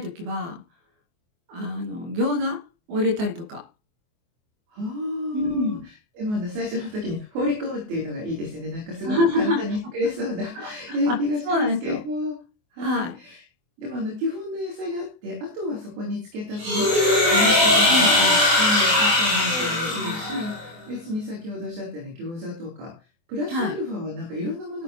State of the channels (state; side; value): late; left; 24 ms